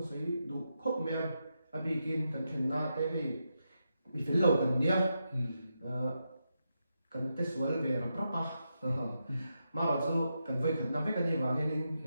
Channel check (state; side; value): inverted; both; correlation -0.85